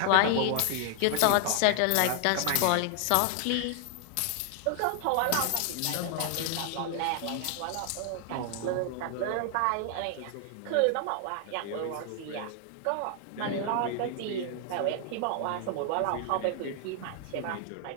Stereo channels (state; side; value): different; both; correlation 0.00